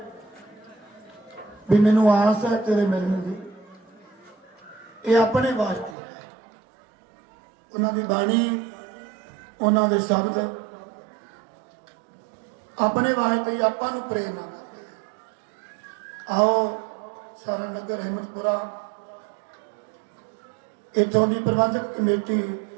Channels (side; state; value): left; drops out; at 6.0 s